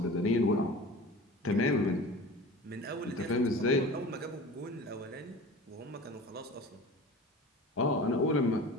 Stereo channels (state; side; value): normal; both; correlation 0.37